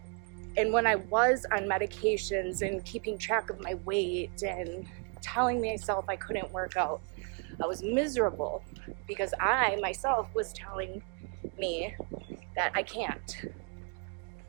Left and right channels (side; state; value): left; quieter; 37.7 dB